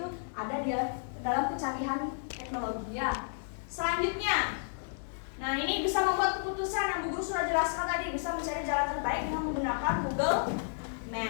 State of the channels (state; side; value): silent; right; digital silence